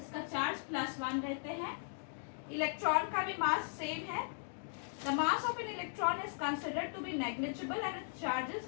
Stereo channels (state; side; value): silent; right; digital silence